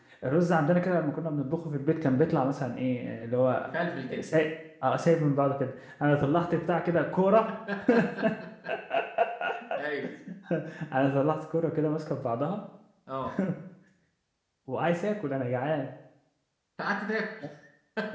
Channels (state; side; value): identical; both; correlation 1.00